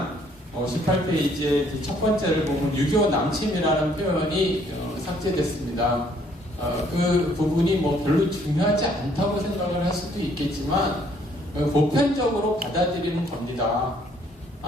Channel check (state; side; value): normal; both; correlation 0.64